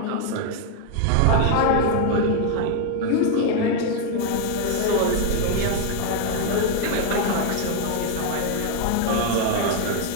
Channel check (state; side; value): different; both; correlation 0.00